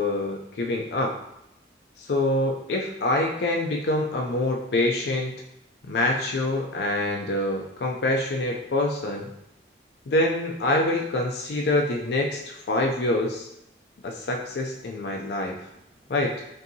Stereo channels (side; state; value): both; normal; correlation 0.23